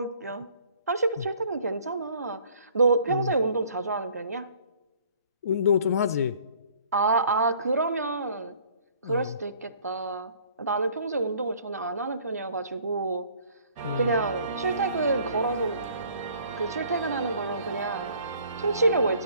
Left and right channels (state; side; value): inverted; both; correlation -0.56